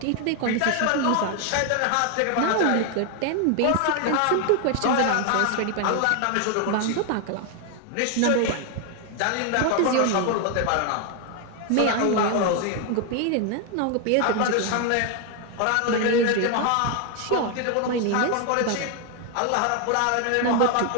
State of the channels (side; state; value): both; different; correlation 0.01